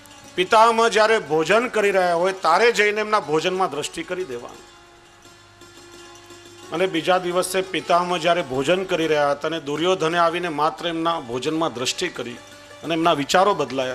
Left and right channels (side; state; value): both; identical; correlation 1.00